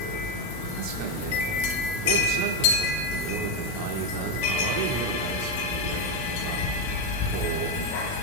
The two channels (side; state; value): right; late; 16 ms